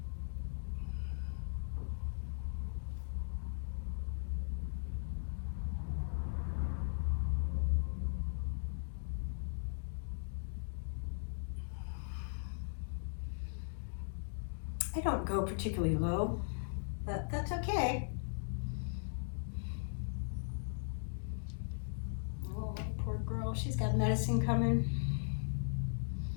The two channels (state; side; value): silent; right; digital silence